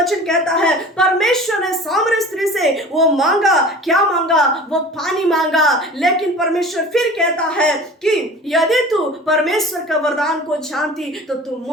कहता है, परमेश्वर ने सामरी स्त्री से वो मांगा, क्या मांगा? वो पानी मांगा। लेकिन परमेश्वर फिर कहता है कि यदि तू परमेश्वर का वरदान को जानती तो तू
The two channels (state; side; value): normal; both; correlation 0.41